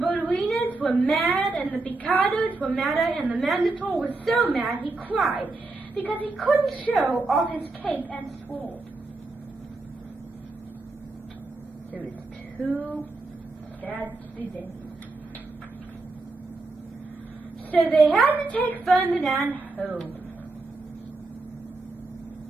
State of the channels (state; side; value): quieter; left; 3.3 dB